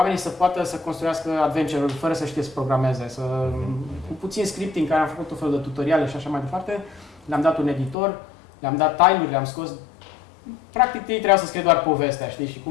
să poată să construiască adventure-uri fără să știe să programeze, cu puțin scripting, care am făcut tot felul de tutoriale și așa mai departe. Le-am dat un editor, le-am dat time-uri, le-am scos. Practic ei trebuiau să scrie doar povestea, știi, și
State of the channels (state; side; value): drops out; right; at 8.0 s